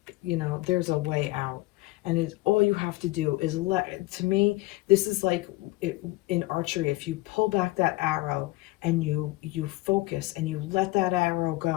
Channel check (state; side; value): quieter; right; 20.1 dB